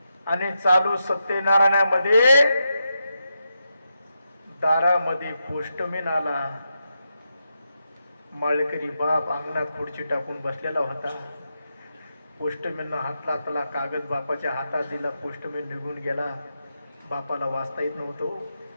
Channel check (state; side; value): inverted; both; correlation -0.85